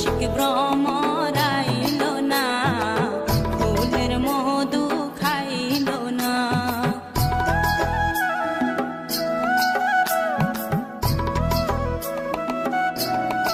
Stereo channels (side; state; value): both; identical; correlation 1.00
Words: ভ্রমর আইল না, ফুলের মধু খাইল না।